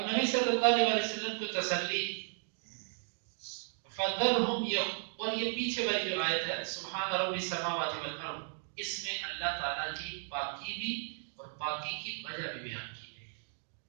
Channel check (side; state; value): left; silent; 54 dB below the other